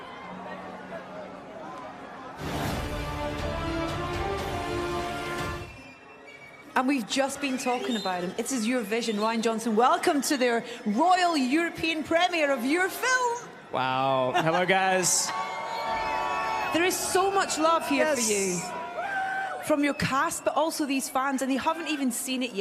And we've just been talking about him. It is your vision, Rian Johnson. Welcome to their Royal European premiere of your film. Wow. Hello, guys. There is so much love here for you. From your cast, but also these fans, and they haven't even seen it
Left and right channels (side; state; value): both; identical; correlation 1.00